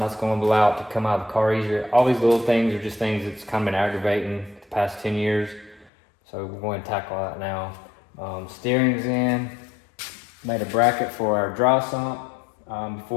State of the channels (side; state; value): right; drops out; at 5.9 s